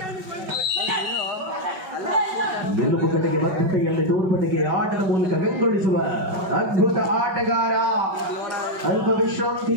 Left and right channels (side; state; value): left; late; 5.4 ms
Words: ಮೆಲುಪುಕಟೆಗೆ ಬದ್ಧತೆಯಲ್ಲಿ ತೋರ್ಪಟೆಗೆ ಆಟದ ಮೂಲಕ ಬೆಂಗೊಳಿಸುವ ಅದ್ಭುತ ಆಟಗಾರ. ಅಲ್ಪ